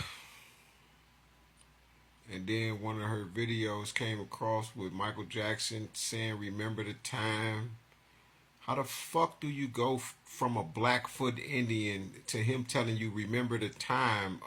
And then one of her videos came across with Michael Jackson saying, remember the time. How the fuck do you go from a Blackfoot Indian to him telling you, remember the time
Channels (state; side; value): identical; both; correlation 1.00